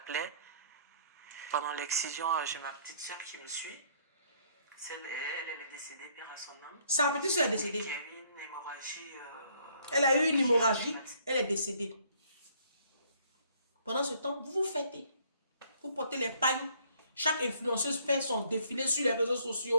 Pendant l'excision, j'ai ma petite soeur qui me suit. Elle est décédée, père à son âme. Sa petite soeur est décédée. Qui a eu une hémorragie. Elle a eu une hémorragie, elle est décédée. Pendant ce temps, vous vous fêtez. Vous portez les pagnes. Chaque influenceuse fait son défilé sur les réseaux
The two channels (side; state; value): both; inverted; correlation -0.63